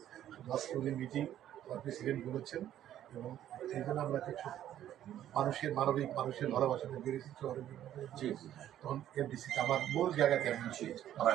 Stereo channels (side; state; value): left; quieter; 11.6 dB